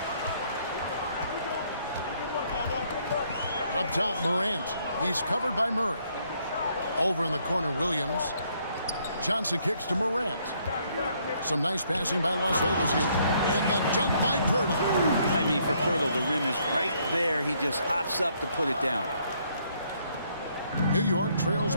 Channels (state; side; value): inverted; both; correlation -0.69